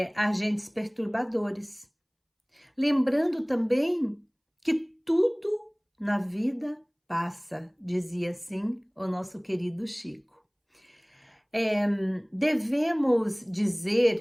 agentes perturbadores. Lembrando também que tudo na vida passa, dizia assim o nosso querido Chico. Devemos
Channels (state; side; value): identical; both; correlation 1.00